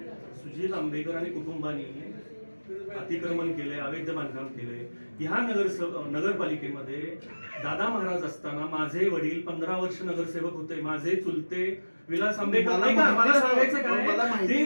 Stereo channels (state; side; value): inverted; both; correlation -1.00